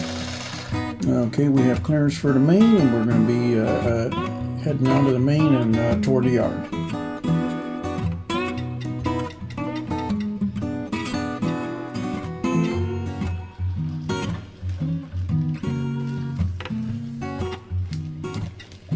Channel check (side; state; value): both; identical; correlation 1.00